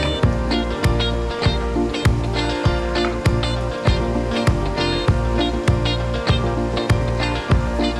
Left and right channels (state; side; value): identical; both; correlation 1.00